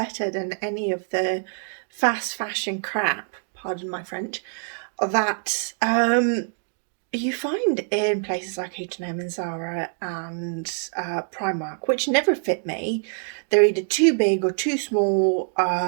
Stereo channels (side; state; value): left; silent; 57 dB below the other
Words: than any of the fast fashion crap, pardon my French, that you find in places like H&M and Zara and Primark, which never fit me. They're either too big or too small